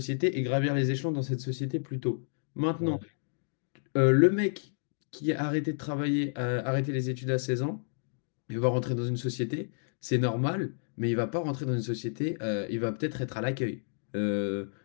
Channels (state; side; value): silent; right; digital silence